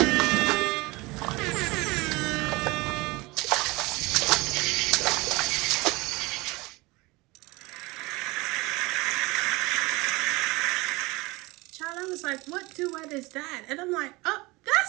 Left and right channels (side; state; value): left; quieter; 23.2 dB